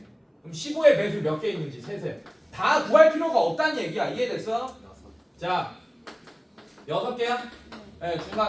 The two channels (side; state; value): both; identical; correlation 1.00